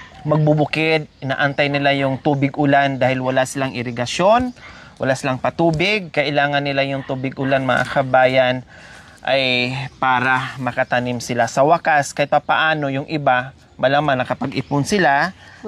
magbubukid. Inaantay nila yung tubig ulan dahil wala silang irigasyon. Wala silang patubig. Kailangan nila yung tubig ulan mga kabayan ay para makatanim sila. Sa wakas, kahit papaano yung iba, malaman nakapag-ipon sila,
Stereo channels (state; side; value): identical; both; correlation 1.00